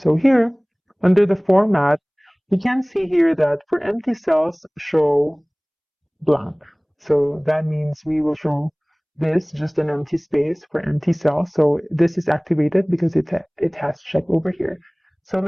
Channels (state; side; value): identical; both; correlation 1.00